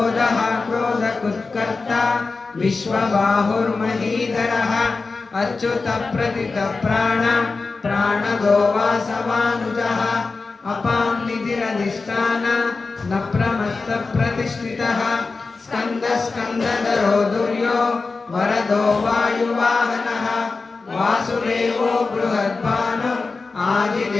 क्रोधकुत्कर्ता विश्वबाहुर्महीधरः अच्युतप्रतितप्राण प्राणदो वासवानुजः अपां निधिरधिष्ठान न प्रमत्तप्रतिष्ठितः स्कन्दस्कन्दधरो दुर्यो वरदो वायुवाहनः वासुदेवो बृहद्भानु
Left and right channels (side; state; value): right; quieter; 4.1 dB